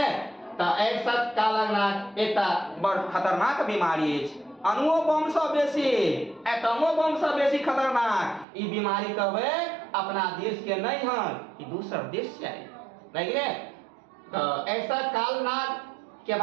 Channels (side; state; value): left; drops out; at 8.5 s